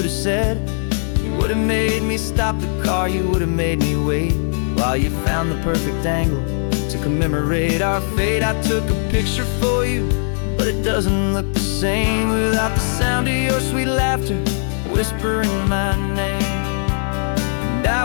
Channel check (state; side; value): silent; right; 66 dB below the other